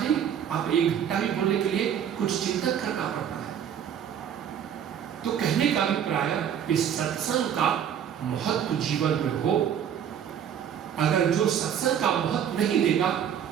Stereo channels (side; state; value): left; quieter; 9.0 dB